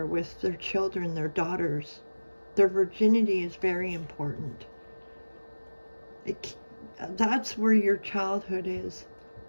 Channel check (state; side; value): inverted; both; correlation -1.00